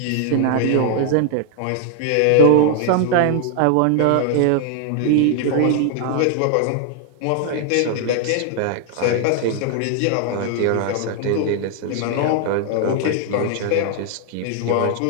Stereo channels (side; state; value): both; different; correlation 0.00